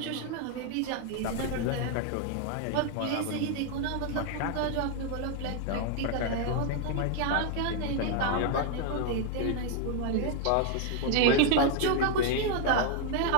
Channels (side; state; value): both; different; correlation 0.00